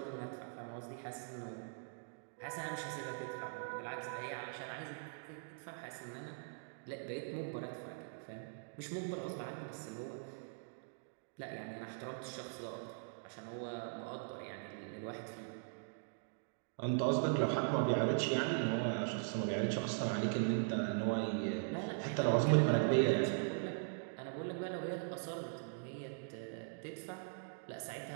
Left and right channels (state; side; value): silent; left; digital silence